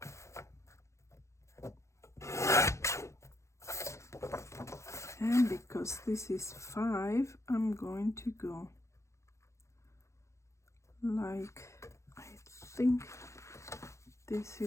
And because this is 5, I'm going to go like, I think this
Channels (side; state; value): right; late; 0.14 ms